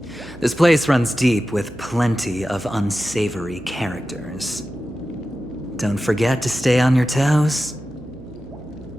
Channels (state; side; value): noise; right; hum, 17 dB below the sound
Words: This place runs deep with plenty of unsavory characters. Don't forget to stay on your toes.